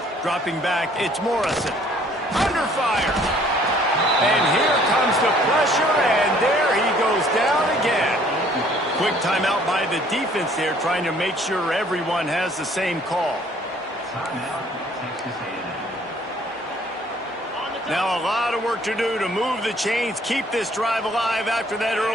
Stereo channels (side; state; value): both; normal; correlation 0.58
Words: Dropping back, it's Morrison. Under fire. And here comes the pressure, and there he goes down again. Quick timeout by the defense there, trying to make sure everyone has the same call. Now a lot of work to do to move the chains, keep this drive alive after that